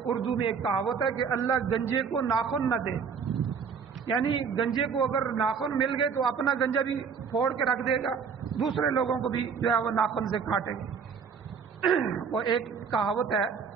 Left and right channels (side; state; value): left; quieter; 6.2 dB